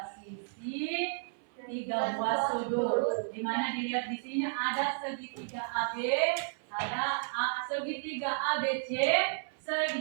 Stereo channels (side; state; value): left; silent; 56 dB below the other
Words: sisi, 3 buah sudut. Di mana dilihat di sini ada segitiga AB, ada segitiga ABC,